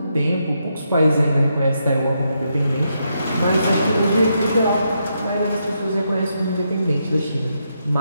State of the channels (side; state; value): both; inverted; correlation -0.81